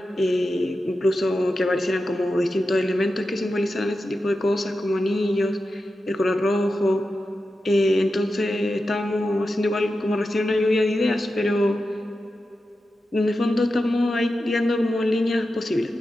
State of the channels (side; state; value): both; normal; correlation 0.91